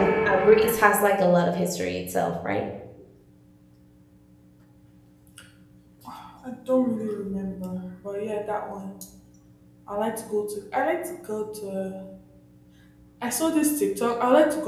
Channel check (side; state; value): both; identical; correlation 1.00